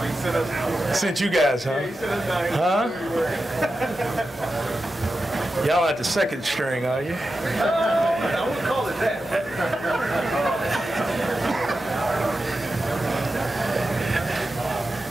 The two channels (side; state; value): both; normal; correlation 0.91